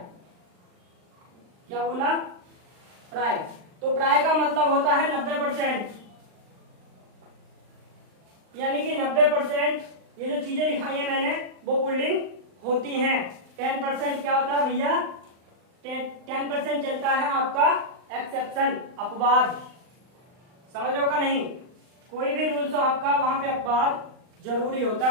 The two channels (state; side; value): late; left; 39 ms